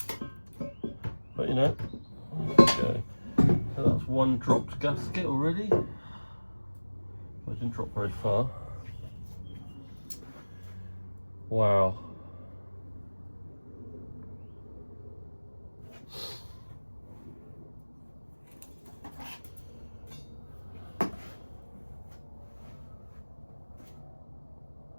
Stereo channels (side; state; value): both; inverted; correlation -1.00